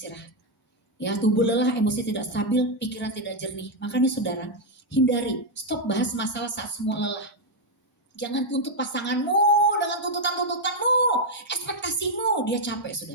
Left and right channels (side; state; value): both; normal; correlation 0.01